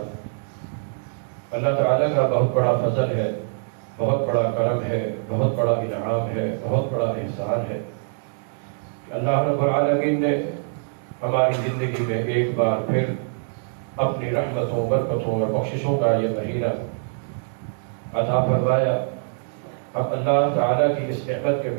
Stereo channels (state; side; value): silent; left; digital silence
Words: اللہ تعالیٰ کا بہت بڑا فضل ہے، بہت بڑا کرم ہے، بہت بڑا انعام ہے، بہت بڑا احسان ہے کہ اللہ رب العالمین نے ہماری زندگی میں ایک بار پھر اپنی رحمتوں، برکتوں اور بخششوں کا یہ مہینہ عطا فرمایا۔ اب اللہ تعالیٰ کی اس نعمت کے